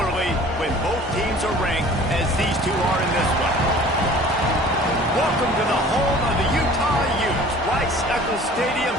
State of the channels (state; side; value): normal; both; correlation 0.47